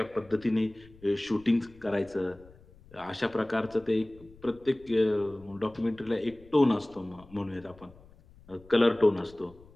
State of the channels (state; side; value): noise; left; rumble, 24 dB below the sound